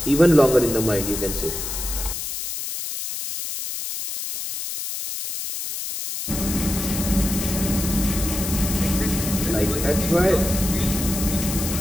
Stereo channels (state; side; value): noise; left; hiss, 5 dB below the sound